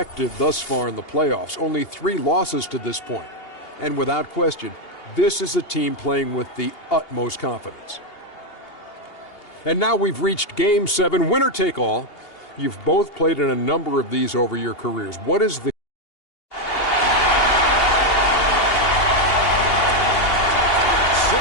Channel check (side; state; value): right; late; 2.8 ms